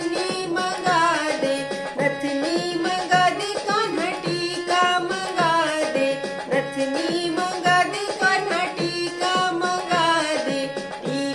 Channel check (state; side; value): identical; both; correlation 1.00